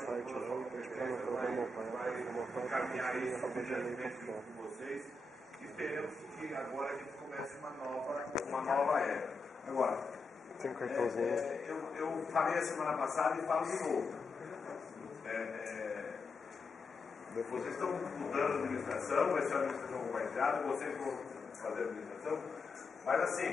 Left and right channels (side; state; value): right; quieter; 3.4 dB